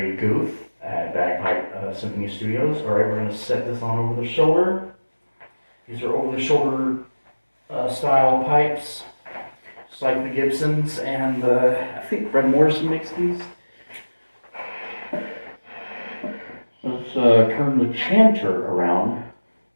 Guth at Bagpipe Symphony Studios. Alright, we're going to set this on over the shoulder. These are over the shoulder style pipes. Just like the Gibsons, and I think Fred Morrison makes these. Let's turn the chanter around.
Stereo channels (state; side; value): inverted; both; correlation -1.00